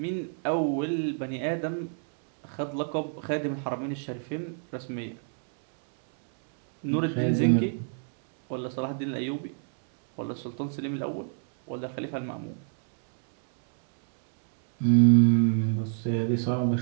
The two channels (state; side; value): silent; left; 60 dB below the other